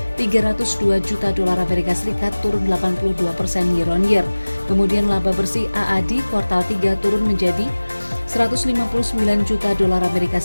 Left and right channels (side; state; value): both; inverted; correlation -1.00